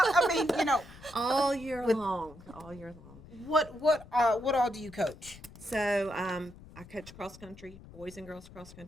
All year long. All year long. What all do you coach? So I coach cross country, boys and girls cross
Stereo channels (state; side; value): noise; left; rumble, 19 dB below the sound